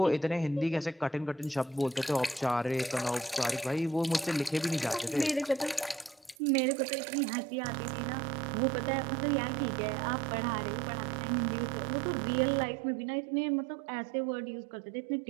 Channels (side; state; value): left; drops out; at 6.4 s